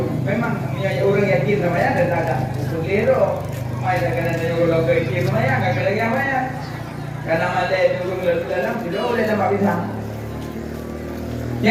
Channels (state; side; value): identical; both; correlation 1.00